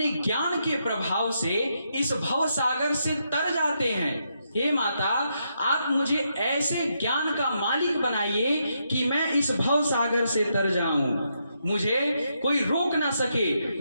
ज्ञान के प्रभाव से इस भव सागर से तर जाते हैं। हे माता, आप मुझे ऐसे ज्ञान का मालिक बनाइए कि मैं इस भव सागर से तर जाऊं, मुझे कोई रोक ना सके,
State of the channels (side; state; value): both; inverted; correlation -0.80